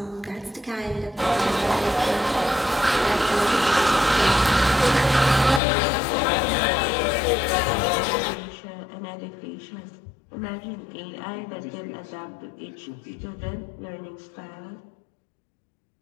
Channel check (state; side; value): drops out; right; at 5.6 s